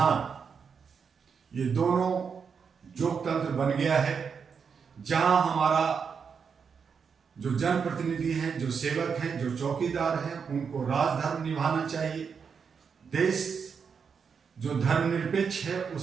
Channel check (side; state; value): left; quieter; 6.2 dB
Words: ये दोनों जोगतंत्र बन गया है, जहां हमारा जो जनप्रतिनिधि हैं, जो सेवक हैं, जो चौकीदार हैं, उनको राजधर्म निभाना चाहिए। देश जो धर्मनिरपेक्ष है